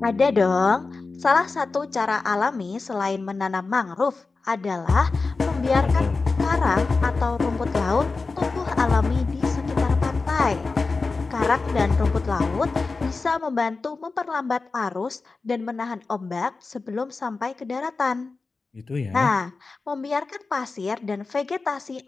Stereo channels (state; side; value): quieter; right; 4.0 dB